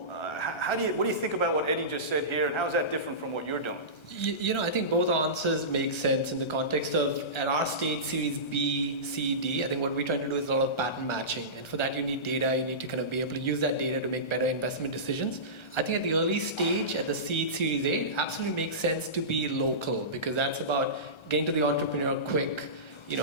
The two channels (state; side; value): late; right; 1.3 ms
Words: What do you think about what Eddie just said here, and how is that different from what you're doing? I think both answers make sense in the context of, at our stage, Series B, C, D, I think what we're trying to do is a lot of pattern matching. And for that, you need data. You need to kind of be able to use that data to make better investment decisions. I think at the early stage, at the seed Series A, it absolutely makes sense to be local, because that's about getting to the entrepreneur quick,